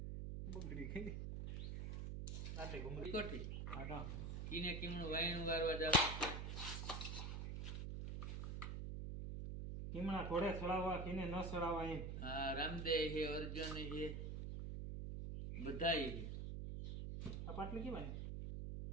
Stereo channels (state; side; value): noise; right; hum, 4 dB below the sound